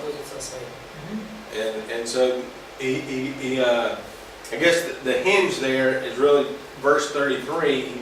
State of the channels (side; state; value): both; identical; correlation 1.00